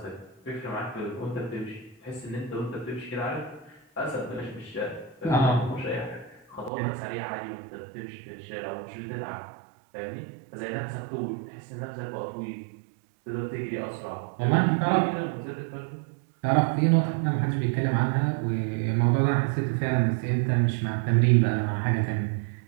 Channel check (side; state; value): left; drops out; at 6.7 s